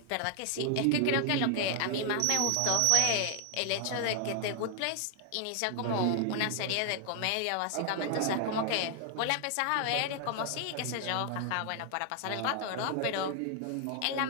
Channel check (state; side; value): different; both; correlation 0.00